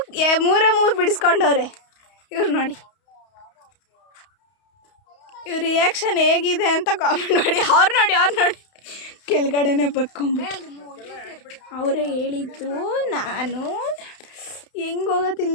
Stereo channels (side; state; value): right; late; 31 ms